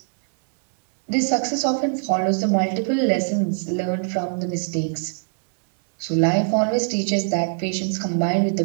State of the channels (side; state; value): left; silent; digital silence